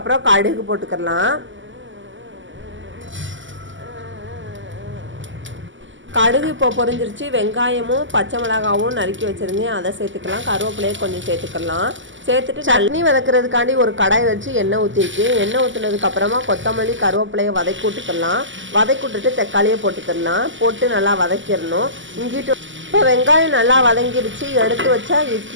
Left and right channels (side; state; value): left; late; 0.55 ms